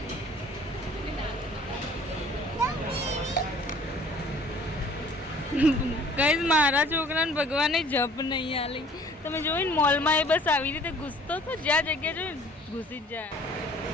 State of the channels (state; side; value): normal; both; correlation 0.53